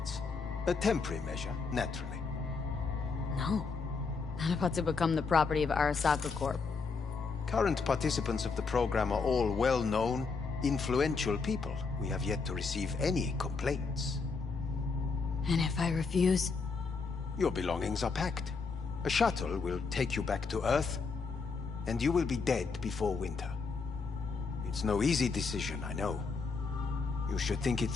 A temporary measure, naturally. No. Not about to become the property of Arasaka Corp. Current participants of the program are all well-known, influential people. We have yet to receive any complaints. And if I refuse? Your belongings are packed. A shuttle will take you back to Earth, and you will be dead before winter. It's no easy decision, I know. You should think it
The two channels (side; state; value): right; quieter; 4.7 dB